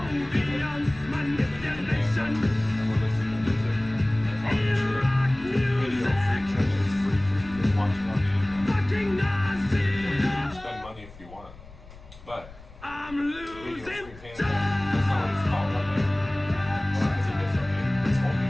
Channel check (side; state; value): left; noise; rumble, 20 dB below the sound